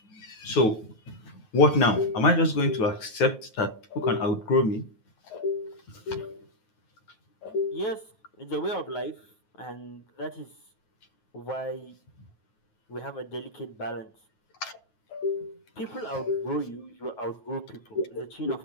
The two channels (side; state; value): right; late; 9.3 ms